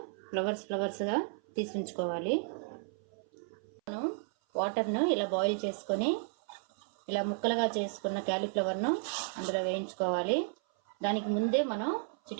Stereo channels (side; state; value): left; silent; 56 dB below the other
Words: ఫ్లవర్స్గా తీసి ఉంచుకోవాలి. మనం వాటర్ను ఇలా బాయిల్ చేసుకొని ఇలా ముక్కలుగా చేసుకున్న క్యాలీఫ్లవర్ను అందులో వేయించుకోవాలి. దానికి ముందే మనం